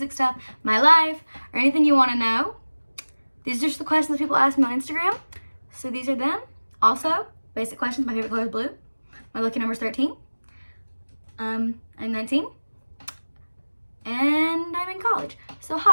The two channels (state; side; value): inverted; both; correlation -1.00